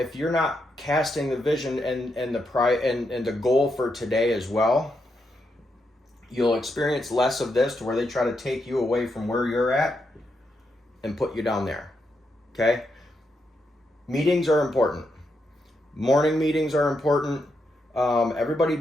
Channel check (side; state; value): both; normal; correlation 0.82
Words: you're not casting the vision and the goal for today as well, you'll experience less of this to where they try to take you away from where you're at and put you down there, okay? Meetings are important. Morning meetings are important. Everybody